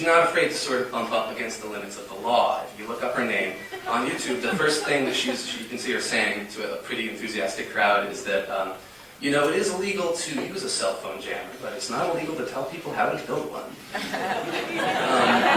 not afraid to sort of bump up against the limits of the law. If you look up her name on YouTube, the first thing that you can see her saying to a pretty enthusiastic crowd is that, it is illegal to use a cell phone jammer, but it's not illegal to tell people how to build one.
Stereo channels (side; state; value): both; identical; correlation 1.00